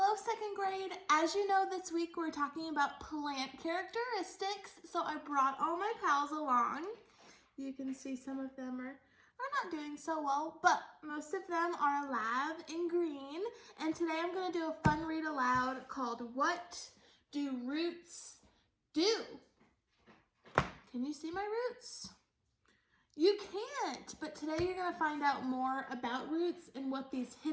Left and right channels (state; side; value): identical; both; correlation 1.00